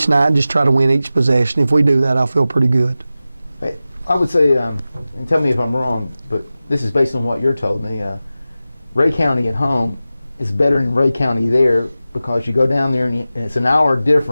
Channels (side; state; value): both; inverted; correlation -0.95